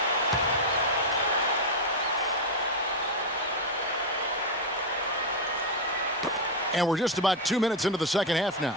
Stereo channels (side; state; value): both; normal; correlation 0.04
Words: And we're just about 2 minutes into the second half now.